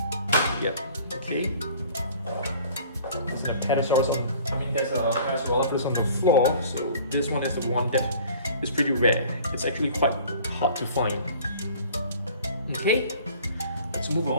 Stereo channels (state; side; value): inverted; both; correlation -0.49